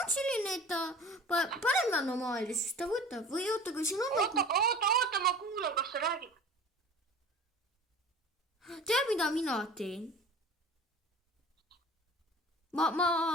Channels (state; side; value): normal; both; correlation 0.41